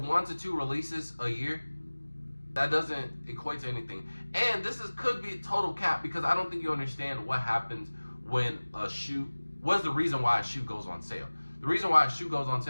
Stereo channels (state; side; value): inverted; both; correlation -1.00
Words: to 2 releases a year? That doesn't equate to anything. And this could be total cap, because I don't think you understand what happens when a shoe, what's the reason why a shoe goes on sale. The reason why a shoe goes on